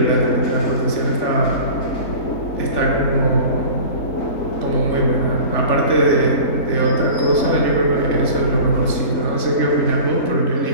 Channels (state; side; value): late; right; 3.5 ms